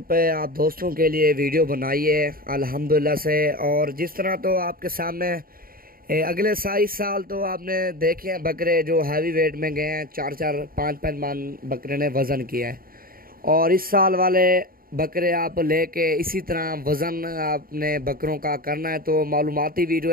पे आप दोस्तों के लिए वीडियो बनाई है अल्हम्दुलिल्लाह से। और जिस तरह तो आपके सामने अगले 27 साल तो आपने देखे हैं बकरे जो हैवी वेट में गए हैं, 4-4 5-5 मन बकरे ने वज़न किया है। और इस साल वाले बकरे आप लेके इसी तरह वज़न आपने बकरों का करना है तो मालूमाती वीडियो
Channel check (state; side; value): late; left; 0.42 ms